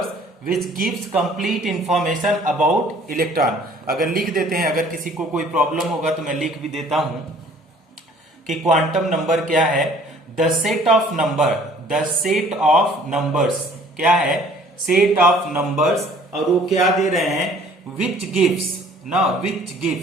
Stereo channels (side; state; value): both; normal; correlation 0.54